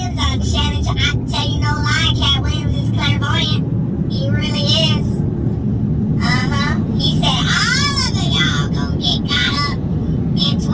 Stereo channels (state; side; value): identical; both; correlation 1.00